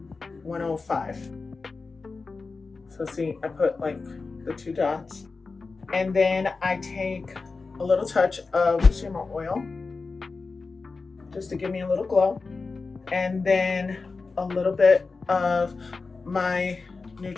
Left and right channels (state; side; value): quieter; right; 4.2 dB